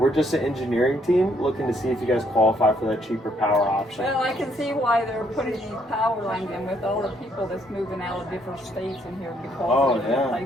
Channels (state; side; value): normal; both; correlation 0.69